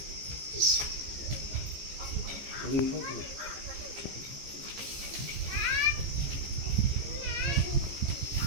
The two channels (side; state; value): left; late; 15 ms